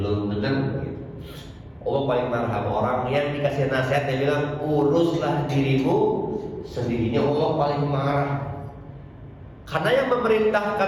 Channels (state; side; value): identical; both; correlation 1.00